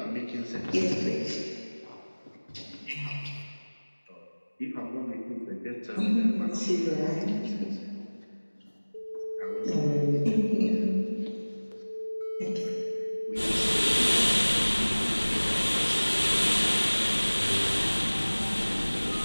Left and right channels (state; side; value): inverted; both; correlation -1.00